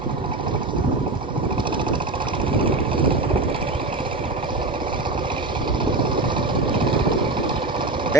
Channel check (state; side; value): quieter; left; 3.1 dB